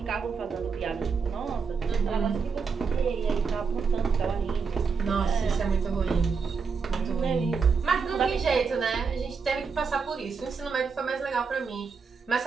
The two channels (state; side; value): quieter; left; 5.4 dB